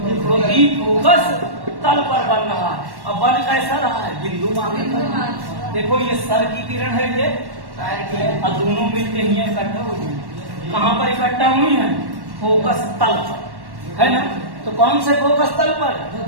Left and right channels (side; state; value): left; late; 1.1 ms